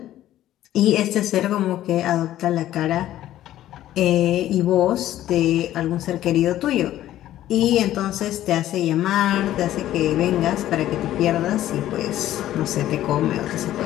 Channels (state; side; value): quieter; right; 13.3 dB